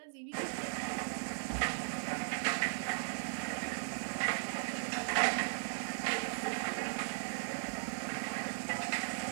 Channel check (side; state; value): left; silent; digital silence